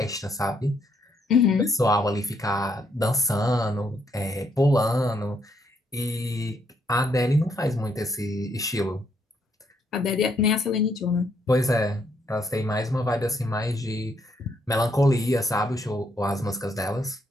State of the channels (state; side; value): normal; both; correlation 0.73